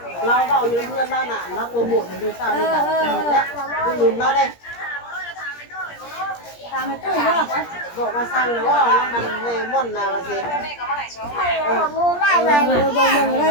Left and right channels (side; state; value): right; late; 17 ms